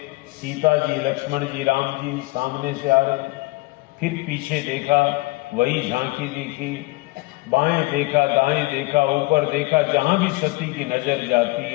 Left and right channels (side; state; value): right; quieter; 22.7 dB